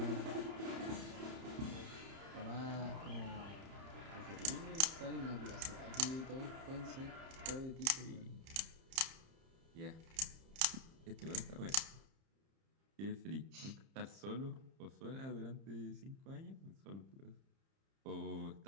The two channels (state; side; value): late; left; 30 ms